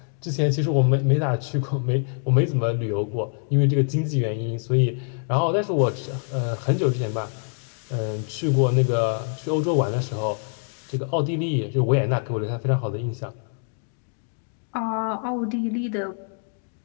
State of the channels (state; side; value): silent; right; 60 dB below the other